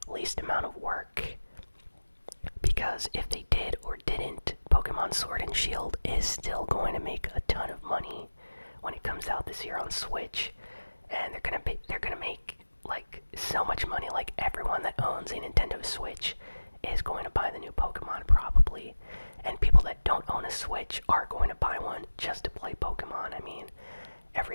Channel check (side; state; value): both; inverted; correlation -1.00